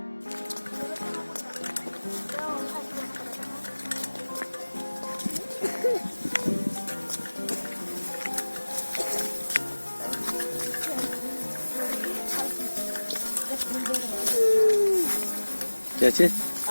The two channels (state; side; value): inverted; both; correlation -1.00